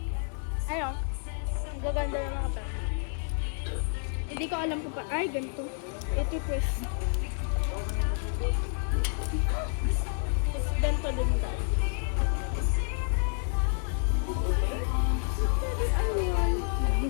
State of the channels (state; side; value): silent; right; 58 dB below the other